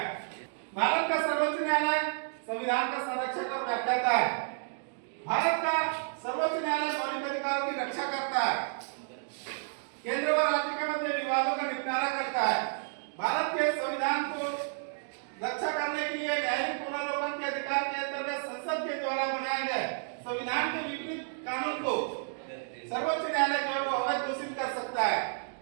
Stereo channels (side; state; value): left; silent; digital silence